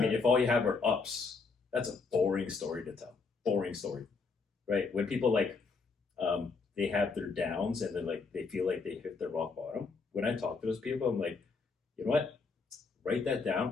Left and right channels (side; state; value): right; quieter; 4.5 dB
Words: if all you have are ups, that's a boring story to tell. Boring story, right? When people they have their downs and they feel like they hit their rock bottom. When I talk to those people, I'm like, you know what? Write that